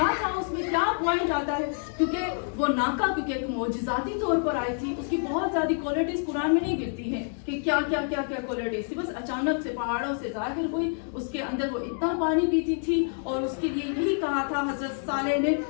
تھا اس میں, کیا پوائنٹ آتا ہے, کیونکہ وہ ناکا کیونکہ ایک معجزاتی طور پر آئی تھی, اس کی بہت زیادہ کوالٹیز قرآن میں نہیں ملتی ہیں کہ کیا کیا کیا کیا کوالٹیز تھی. بس اچانک سے پہاڑوں سے ظاہر ہوئی, اس کے اندر وہ اتنا پانی پیتی تھی, اور اس کے لیے یہی کہا تھا حضرت صالح نے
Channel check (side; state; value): right; silent; 60 dB below the other